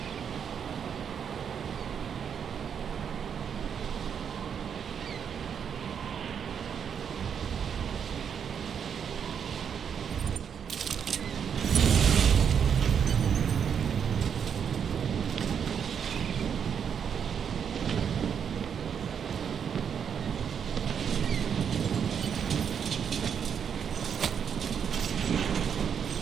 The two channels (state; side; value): quieter; left; 7.6 dB